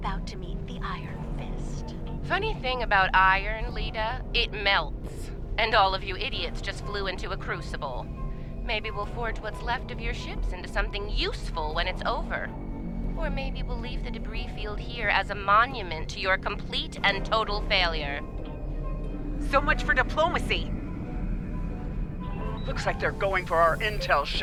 to meet the Iron Fist. Funny thing about iron, Lita, it melts. And all of you idiots just flew into a crucible. Maybe we'll forge what's left of your ships into something useful when it's over. Or maybe we'll leave the debris field here as a monument to your complete and total failure. So much for diplomacy. Looks like they're going for our intel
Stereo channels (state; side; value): identical; both; correlation 1.00